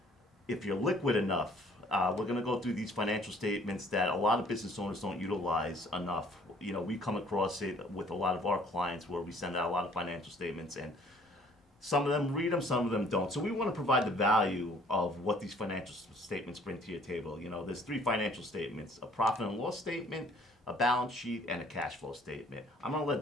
if you're liquid enough. We're going to go through these financial statements that a lot of business owners don't utilize enough. You know, we come across it with a lot of our clients where we send out a lot of financial statements, and some of them read them, some of them don't. So we want to provide the value of what these financial statements bring to your table. You know, there's three financial statements: a profit and loss statement, a balance sheet, and a cash flow statement. I'm going to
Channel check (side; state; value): both; normal; correlation 0.57